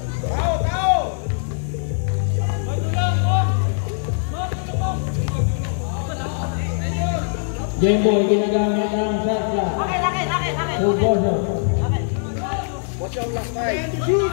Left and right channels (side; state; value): right; silent; digital silence